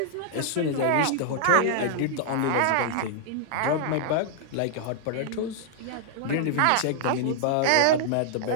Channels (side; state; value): both; different; correlation -0.01